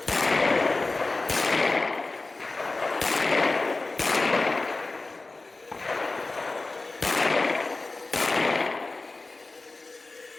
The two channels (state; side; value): quieter; right; 3.4 dB